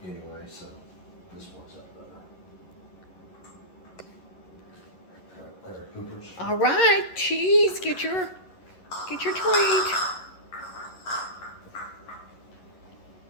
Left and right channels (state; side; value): late; right; 11 ms